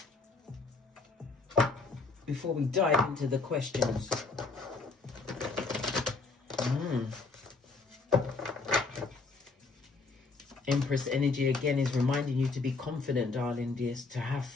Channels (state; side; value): quieter; right; 4.0 dB